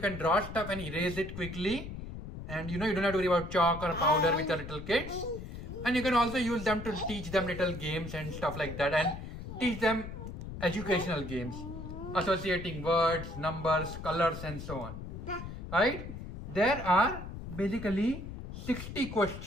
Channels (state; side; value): noise; left; rumble, 9 dB below the sound